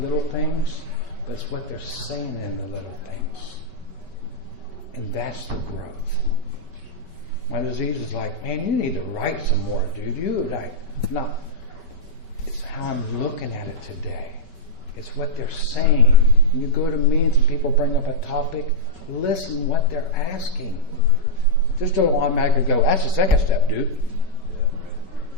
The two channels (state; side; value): late; right; 5.6 ms